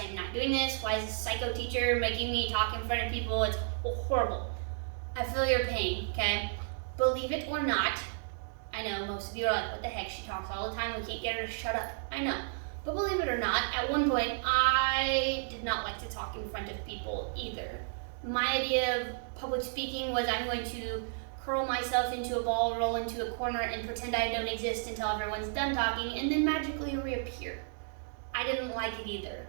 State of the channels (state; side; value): silent; left; digital silence